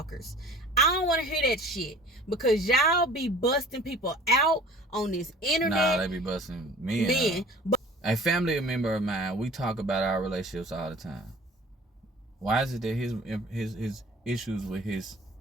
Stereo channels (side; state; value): both; normal; correlation 0.46